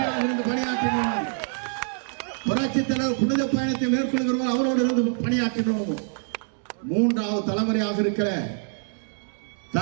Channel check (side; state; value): left; silent; 61 dB below the other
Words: இருந்து பணியாற்றினோம், புரட்சி தலைவர் புனித பயணத்தை மேற்கொள்கிறோம், அவரோடு இருந்து பணியாற்றினோம். மூன்றாவது தலைமுறையாக இருக்கிற